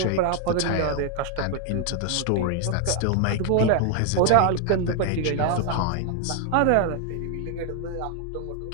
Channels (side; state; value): both; different; correlation 0.00